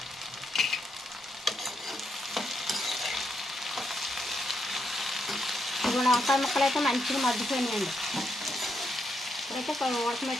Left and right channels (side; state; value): both; normal; correlation 0.80